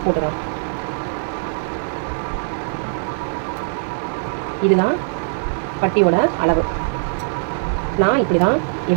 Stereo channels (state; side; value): silent; left; digital silence